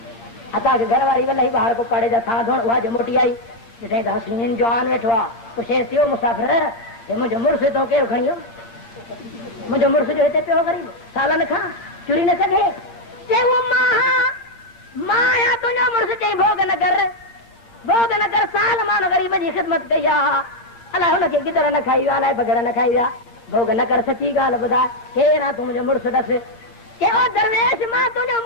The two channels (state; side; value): late; right; 8.7 ms